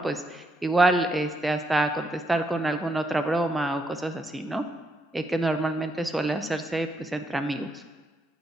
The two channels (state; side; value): normal; both; correlation 0.77